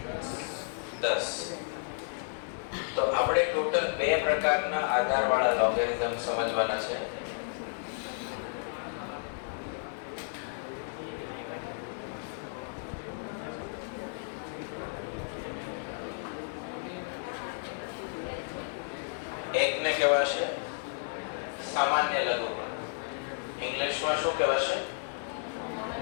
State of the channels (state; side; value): silent; right; digital silence